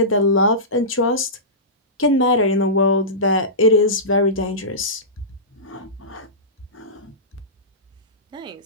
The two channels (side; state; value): both; normal; correlation -0.20